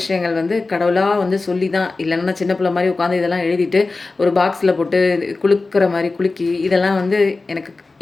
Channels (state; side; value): quieter; right; 3.6 dB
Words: வந்து கடவுளா வந்து சொல்லி தான் இல்லன்னா நான் சின்ன பிள்ளை மாரி உட்காந்து இதெல்லாம் எழுதிட்டு, ஒரு பாக்ஸ்ல போட்டு குலுக்குற மாரி குலுக்கி, இதெல்லாம் வந்து எனக்கு